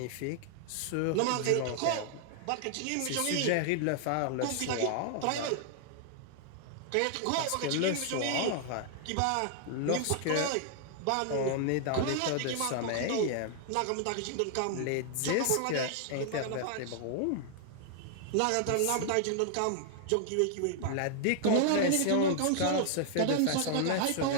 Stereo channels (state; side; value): different; both; correlation 0.00